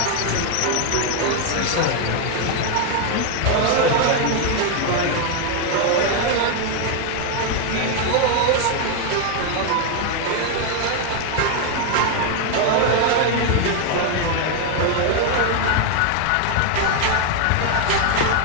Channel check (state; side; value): different; both; correlation 0.00